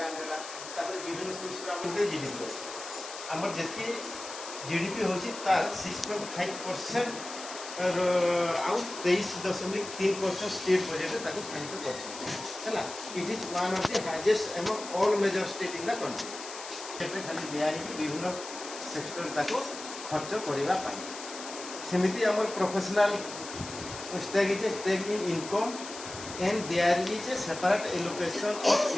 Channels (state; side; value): noise; left; hiss, 11 dB below the sound